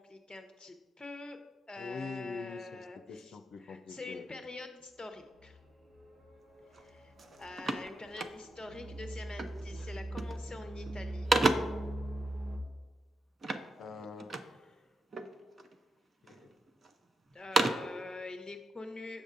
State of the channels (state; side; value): normal; both; correlation 0.85